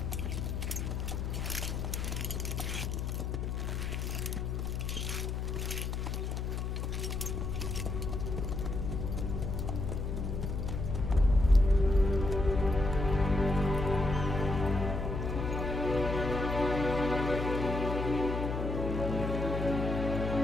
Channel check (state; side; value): noise; left; hum, 2 dB below the sound